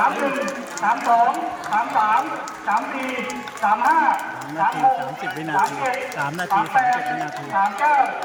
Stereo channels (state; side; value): identical; both; correlation 1.00